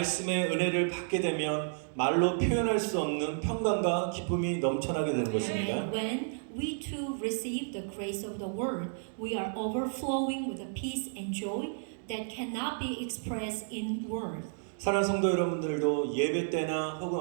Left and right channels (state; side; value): silent; left; digital silence